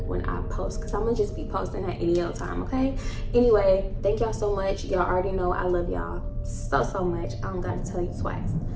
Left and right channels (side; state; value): both; identical; correlation 1.00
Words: when I post, because I'm gonna just be posting at any old time, okay? Anyway, thank y'all so much. Y'all already know I love y'all so much. I don't gotta tell you twice.